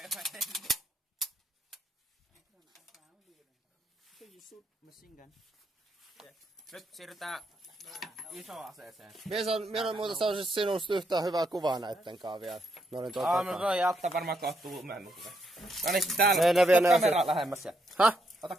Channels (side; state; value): both; normal; correlation 0.77